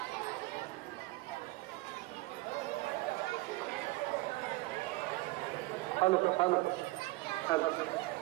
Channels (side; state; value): left; quieter; 20.9 dB